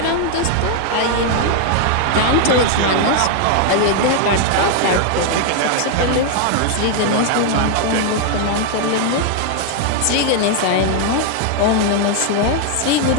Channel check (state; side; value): different; both; correlation 0.00